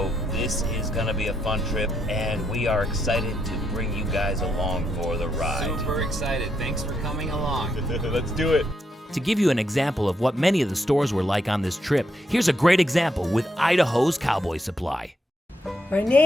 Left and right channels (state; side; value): normal; both; correlation 0.79